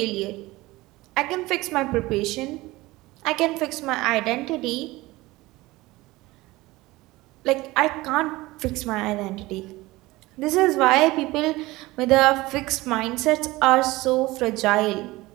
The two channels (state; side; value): quieter; left; 19.9 dB